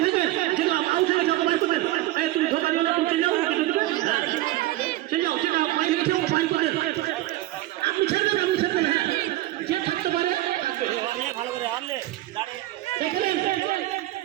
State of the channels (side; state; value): left; quieter; 16.4 dB